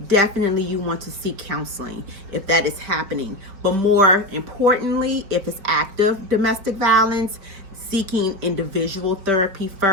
definitely you want to seek counseling if that is happening. But more importantly, if it's active domestic violence, seeking individual therapy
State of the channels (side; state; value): left; late; 4.8 ms